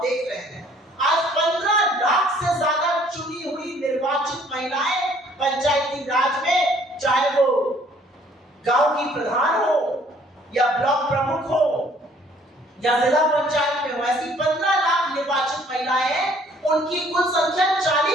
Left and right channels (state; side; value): normal; both; correlation 0.59